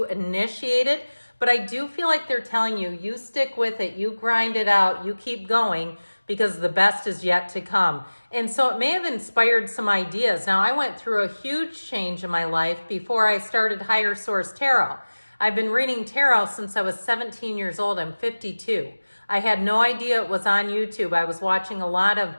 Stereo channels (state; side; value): inverted; both; correlation -1.00